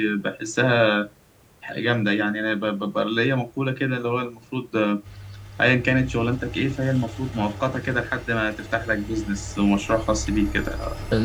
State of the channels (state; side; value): identical; both; correlation 1.00